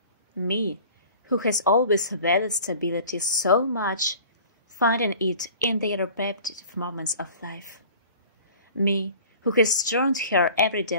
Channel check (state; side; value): inverted; both; correlation -0.45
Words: Me, who has always valued stability so much, finding it in the repetitive moments of life. Me, who has turned her everyday